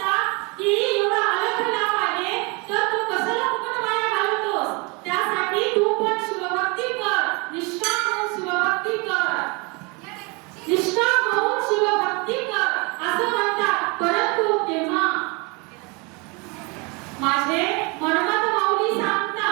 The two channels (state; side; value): quieter; left; 29.3 dB